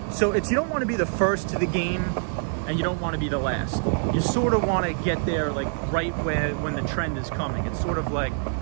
so it's, you don't want to be the first to the game, and you don't want to be the last. You sort of want to get there like right when the trend is coming. It's sort of like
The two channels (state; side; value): silent; left; digital silence